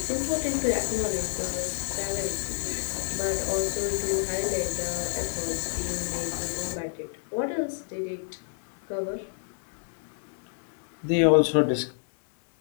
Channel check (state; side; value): silent; right; digital silence